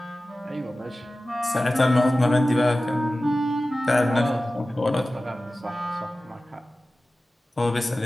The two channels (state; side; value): normal; both; correlation 0.96